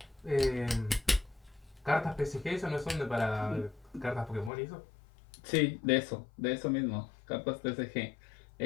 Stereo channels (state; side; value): drops out; right; at 4.5 s